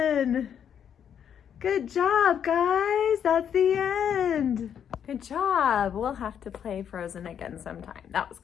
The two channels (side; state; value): right; quieter; 8.5 dB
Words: Good job, guys. That's the end. Good job. We'll have to play Frozen again sometime. That was